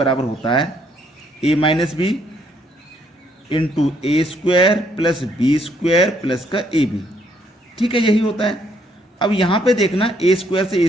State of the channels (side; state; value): both; normal; correlation 0.70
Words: होता है A minus B into A square plus B square plus का ए बी। ठीक है, यही होता है। अब यहां पे देखना, ए स्क्वायर से ए